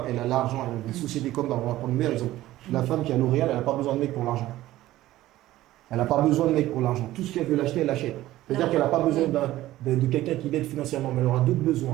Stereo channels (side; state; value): left; quieter; 15.5 dB